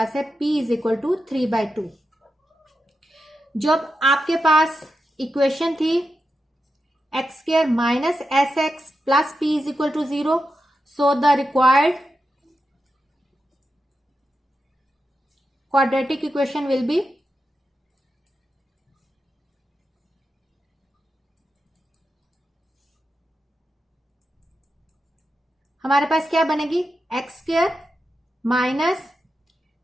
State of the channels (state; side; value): normal; both; correlation 0.88